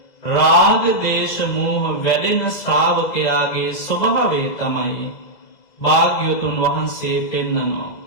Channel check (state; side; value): late; right; 2.0 ms